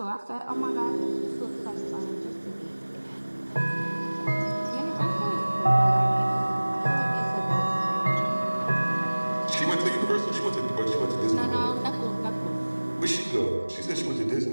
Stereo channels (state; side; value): inverted; both; correlation -1.00